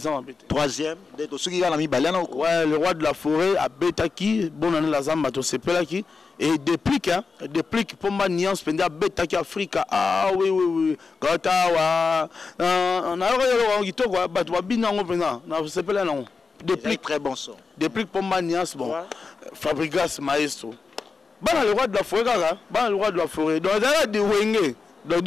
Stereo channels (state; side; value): quieter; right; 4.6 dB